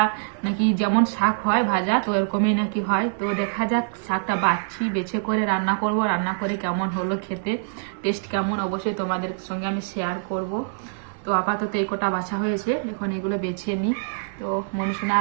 নাকি যেমন শাক হয় ভাজা, তো এরকমই নাকি হয়। তো দেখা যাক, শাকটা বাছছি, বেছে করে রান্না করব, রান্না করে কেমন হলো খেতে, টেস্ট কেমন অবশ্যই তোমাদের সঙ্গে আমি শেয়ার করব। তো আপাতত এই কটা বাছা হয়েছে, এখন এগুলো বেছে নিই। তো মনুষণা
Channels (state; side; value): silent; left; digital silence